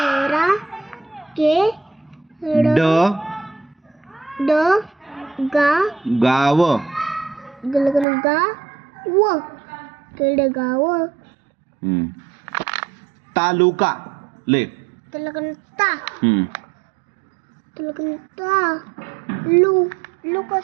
ड गाव. तालुका ले.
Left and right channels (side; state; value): left; drops out; at 8.1 s